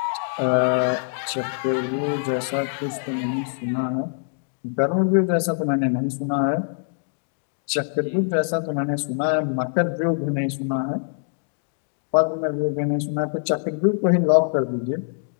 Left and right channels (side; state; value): right; silent; digital silence